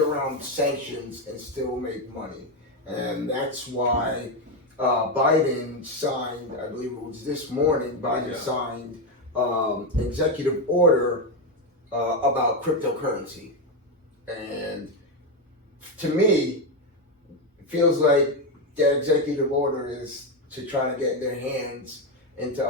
sanctions and still make money, and that's why Biden signed, I believe it was this morning, signed executive order about cryptocurrency, and to me, it feels like that executive order is to try to get their hands into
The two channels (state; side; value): normal; both; correlation 0.08